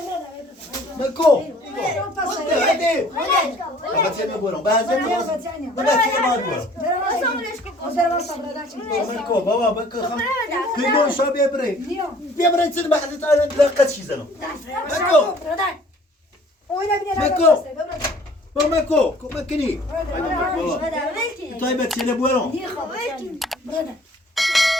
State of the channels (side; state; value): both; normal; correlation 0.54